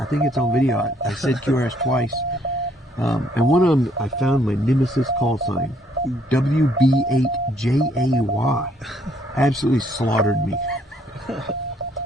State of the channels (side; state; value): both; normal; correlation 0.67